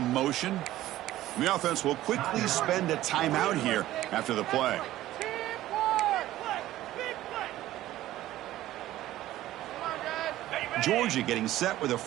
motion. The offense will quickly spend a timeout here after the play. Georgia getting set with a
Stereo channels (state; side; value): quieter; left; 14.7 dB